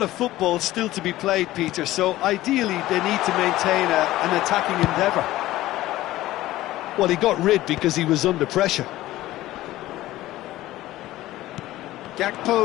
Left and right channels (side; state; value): right; quieter; 16.0 dB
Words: of football still to be played, Peter, so ideally they need to maintain an attacking endeavour. Well, he got rid because he was under pressure.